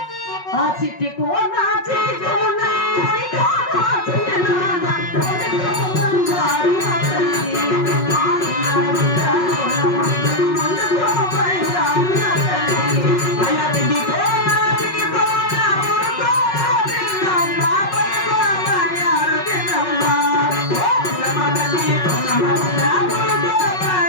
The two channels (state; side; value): late; right; 5.4 ms